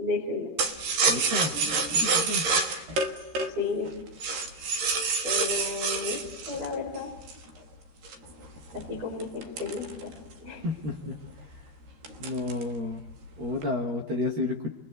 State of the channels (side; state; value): left; late; 13 ms